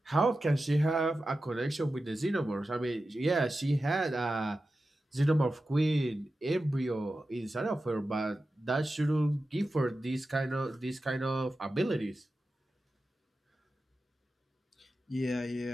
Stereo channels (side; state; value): both; normal; correlation 0.93